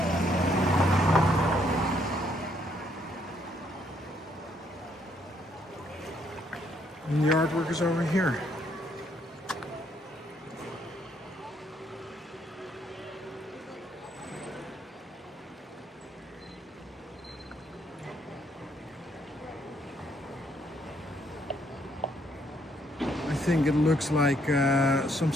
And the artwork is over here. I think it looks like some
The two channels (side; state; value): both; normal; correlation 0.70